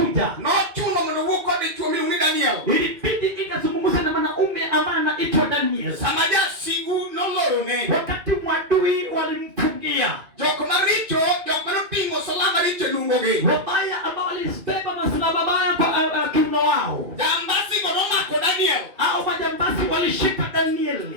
No chuno mnuko de chumi uni Daniel. Ilibidi ikazungumza na mwanaume ambaye anaitwa Daniel. Samaja sigu nolorone. Wakati mwadui walimfungia. Joko maricho, joko pingo salama richo lungoge. Wabaya ambao walisibeba masalaba mabaya kwa kiuno wao. Jambasi godoma ko Daniel. Hao majambasi walishika Daniel.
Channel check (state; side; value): late; left; 2.4 ms